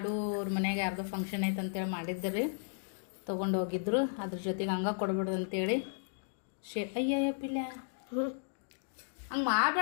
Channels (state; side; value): silent; right; digital silence